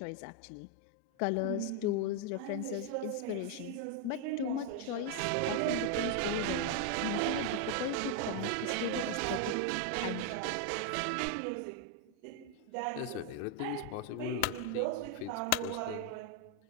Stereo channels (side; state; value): both; different; correlation 0.01